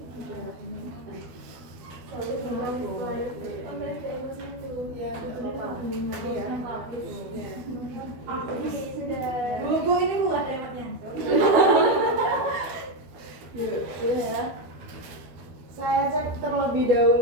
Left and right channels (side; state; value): left; late; 12 ms